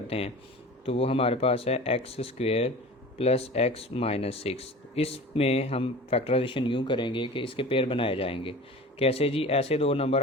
हैं, तो वो हमारे पास है x² + x - 6। इसमें हम फैक्टराइजेशन यूँ करेंगे कि इसके पेयर बनाए जाएंगे। कैसे जी? ऐसे दो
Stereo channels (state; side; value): normal; both; correlation 0.37